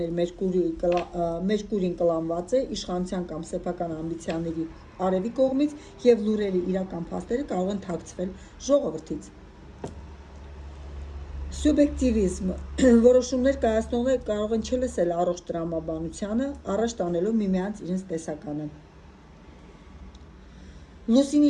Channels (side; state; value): both; identical; correlation 1.00